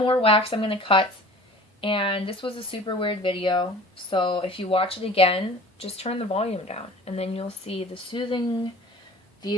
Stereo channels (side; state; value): both; normal; correlation 0.44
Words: wax I'm going to cut. And this was a super weird video, so if you watch it again, just turn the volume down, and then you'll see the soothing